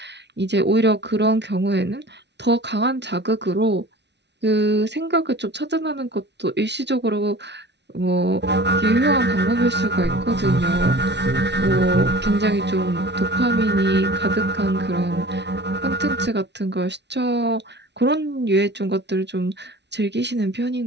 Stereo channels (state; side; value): late; left; 0.50 ms